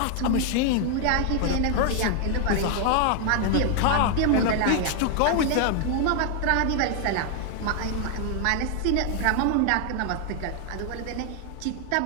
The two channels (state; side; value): different; both; correlation 0.00